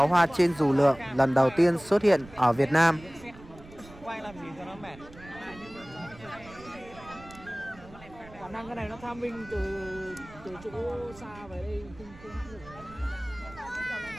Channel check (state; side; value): noise; right; rumble, 20 dB below the sound